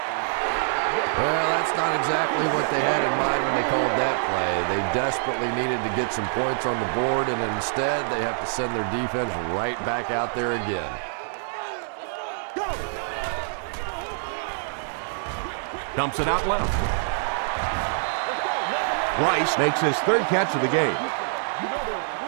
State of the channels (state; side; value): silent; left; 61 dB below the other